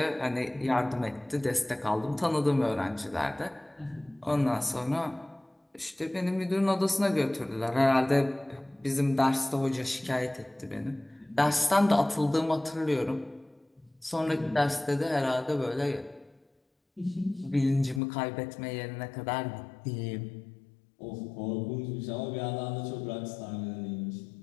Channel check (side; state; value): right; drops out; at 18.0 s